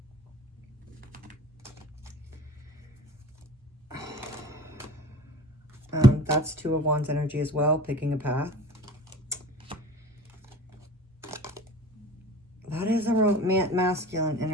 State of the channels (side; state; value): both; normal; correlation 0.41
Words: That's Two of Wands energy as well, picking a path. That is a masculine